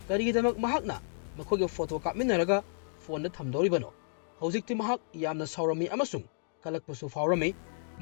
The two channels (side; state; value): right; silent; digital silence